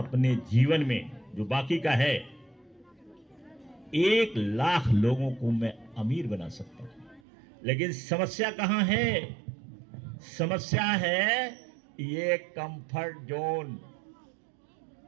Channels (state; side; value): drops out; left; at 7.2 s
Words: जीवन में जो बाकी का है 1 लाख लोगों को मैं अमीर बना सकता हूं। लेकिन समस्या कहां है, समस्या है ये कंफर्ट जोन।